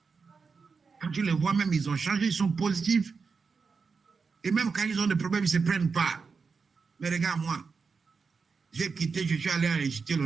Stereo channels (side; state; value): left; quieter; 5.1 dB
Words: Quand tu les vois même, ils ont changé, ils sont positifs. Et même quand ils ont des problèmes, ils ne se prennent pas. Mais regarde moi, j'ai quitté, je suis allé enregistrer le